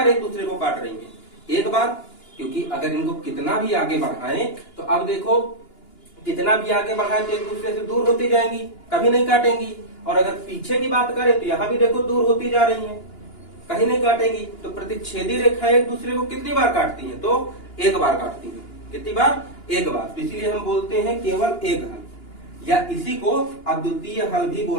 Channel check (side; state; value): right; late; 2.9 ms